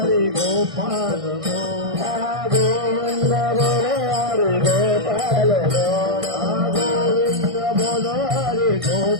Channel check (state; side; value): late; left; 1.5 ms